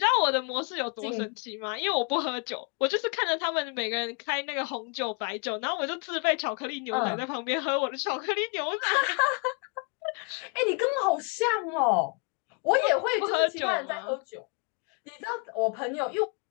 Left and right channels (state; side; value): quieter; right; 36.5 dB